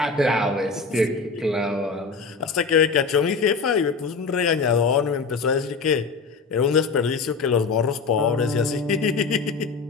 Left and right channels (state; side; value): quieter; right; 4.6 dB